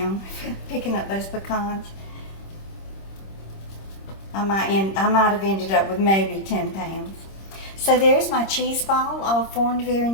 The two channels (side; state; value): right; late; 26 ms